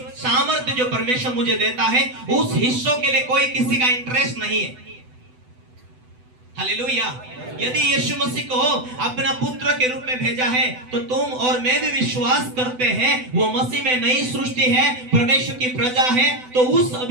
सामर्थ्य जो परमेश्वर मुझे देता है, उस हिस्सों के लिए कोई किसी का इंटरेस्ट नहीं है। हालेलुया। यदि यीशु मसीह को अपना पुत्र के रूप में भेजा है तो तुम और मैं भी विश्वास करते हैं वो मसीह में नई सृष्टि है, परमेश्वर की प्रजा है। तो उस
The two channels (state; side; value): late; left; 8.0 ms